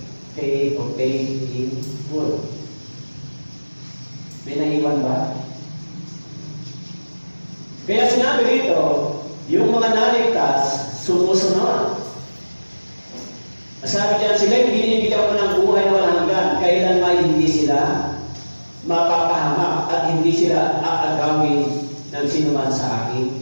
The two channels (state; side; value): inverted; both; correlation -1.00